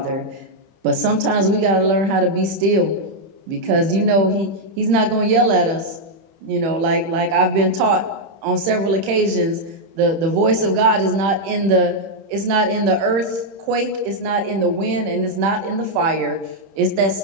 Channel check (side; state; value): left; late; 31 ms